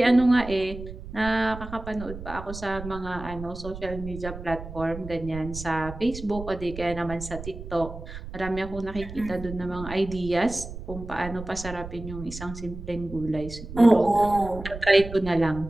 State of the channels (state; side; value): noise; right; rumble, 11 dB below the sound